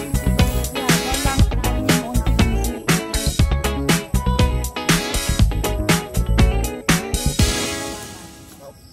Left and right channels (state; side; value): identical; both; correlation 1.00